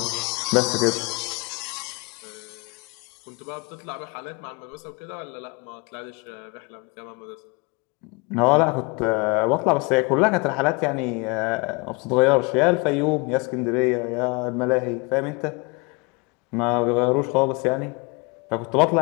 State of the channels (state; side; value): quieter; right; 29.6 dB